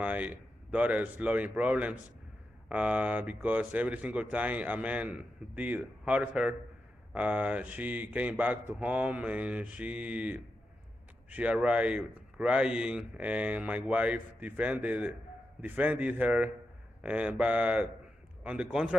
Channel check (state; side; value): normal; both; correlation 0.88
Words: daughter's loving problems because every single time a man did hurt her, she came back to home and she arrived crying, and my wife defended her. But on the